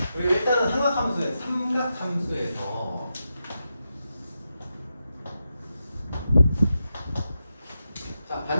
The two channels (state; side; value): inverted; both; correlation -0.88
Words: 그리고 일단은 삼각함수에서 자,